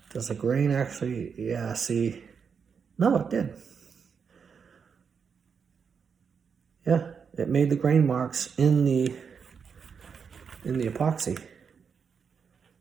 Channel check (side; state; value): left; quieter; 6.3 dB